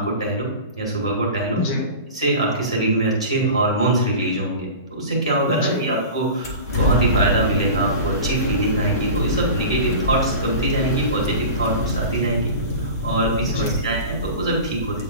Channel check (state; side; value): inverted; both; correlation -0.34